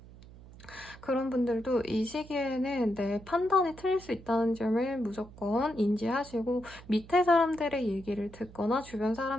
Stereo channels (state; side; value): noise; right; hum, 19 dB below the sound